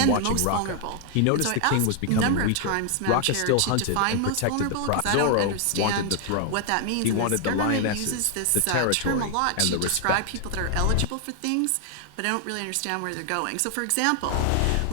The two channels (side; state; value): both; different; correlation 0.00